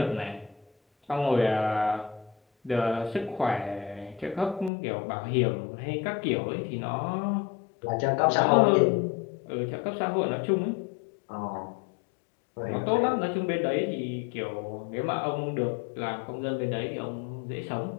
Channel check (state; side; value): drops out; right; at 4.7 s